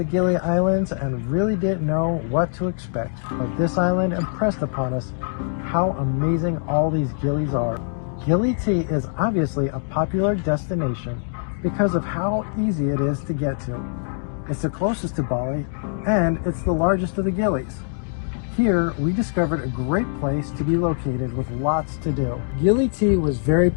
Gili Islands and really didn't know what to expect. But this island impressed upon us how amazing all these gillies are. Gili tea is obviously a popular destination because of how easy it is to get to. It's the closest to Bali and it's the largest of the gillies. Here, we discovered a great place to be located with lots to do. Gili tea was very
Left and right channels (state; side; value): silent; right; 63 dB below the other